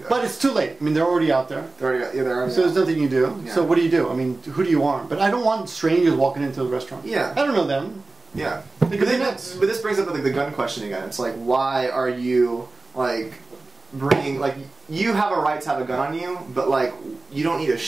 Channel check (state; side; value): quieter; left; 3.3 dB